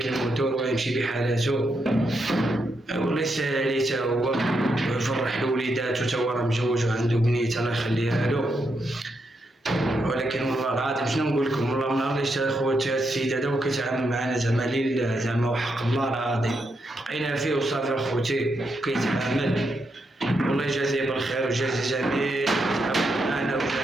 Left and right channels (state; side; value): normal; both; correlation 0.82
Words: الموتور ويمشي بحالاتو والله يسهل عليه تا هو ويفرح لوليداتو تا هو راه مجوج وعنده بنيته الله يخليها له. ولكن والله العظيم شنو نقول لكم والله من نهار اللي شتا خوتي هاد السيد هذا وكيتعامل معنا زعما لله زعما وحق الله العظيم بقينا فيه وصافي اخوتي كيتعامل. والله يجازيه بالخير ويجازي جميع معنا